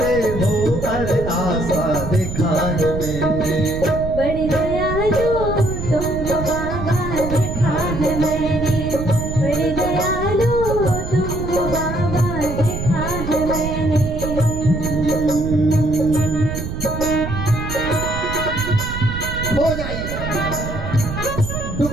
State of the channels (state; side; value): noise; right; rumble, 6 dB below the sound